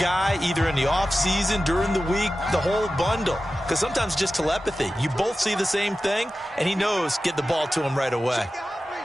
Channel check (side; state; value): both; normal; correlation 0.94